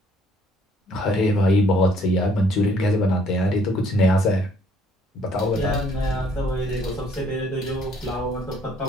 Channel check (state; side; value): normal; both; correlation 0.63